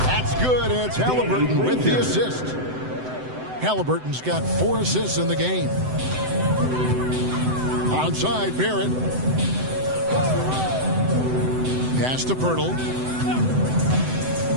That's good, and it's Halliburton with the assist. Halliburton's got 4 assists in the game. Onside, Barrett. Pass to Pirtle.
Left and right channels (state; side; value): late; left; 7.9 ms